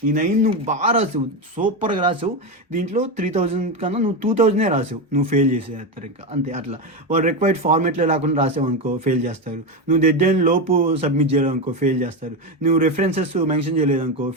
నువ్వు బాగా రాసావు, సూపర్గా రాసావు. దీంట్లో 3000 కన్నా నువ్వు 2000 రాసావు, నువ్వు ఫెయిల్ చేసేస్తారు. ఇంకా అంతే. అట్లా వాళ్ళు రిక్వైర్డ్ ఫార్మేట్లో లేకుండా రాసావు అనుకో ఫెయిల్ చేస్తారు. నువ్వు డెడ్లైన్ లోపు సబ్మిట్ చేయలేదనుకో ఫెయిల్ చేస్తారు. నువ్వు రెఫరెన్సెస్ మెన్షన్ చేయలేదనుకో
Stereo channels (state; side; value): normal; both; correlation 0.14